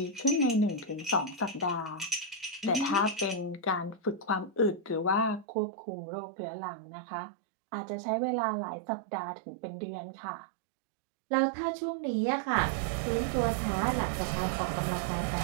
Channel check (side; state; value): left; drops out; at 5.5 s